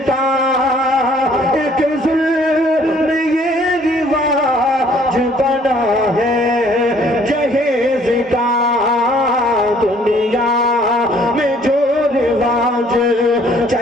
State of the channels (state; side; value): normal; both; correlation 0.60